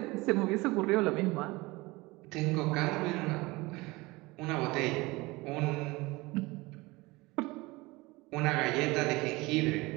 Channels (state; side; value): quieter; left; 22.4 dB